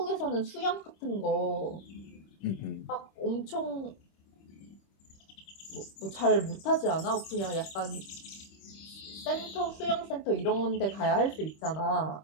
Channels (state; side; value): late; right; 26 ms